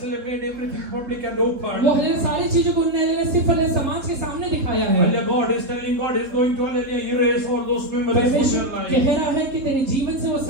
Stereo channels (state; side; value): late; left; 3.7 ms